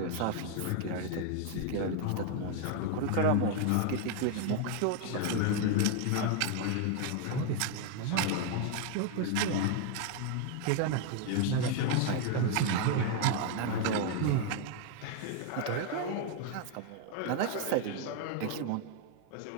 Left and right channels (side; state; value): both; different; correlation 0.01